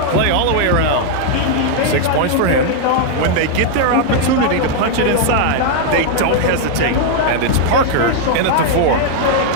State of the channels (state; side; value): different; both; correlation 0.00